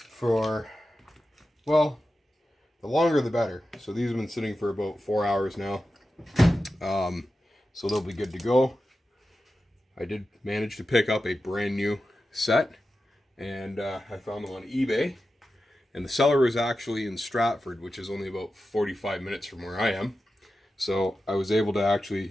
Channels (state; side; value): normal; both; correlation 0.92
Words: for, well, the longer the better. So these have been sitting for about 4 hours now. So they'll be good to go. I did manage to pick up a brand new set, and I found them on eBay. And the seller was actually in Stratford, which is only about 45 minutes from where I am. So I was able to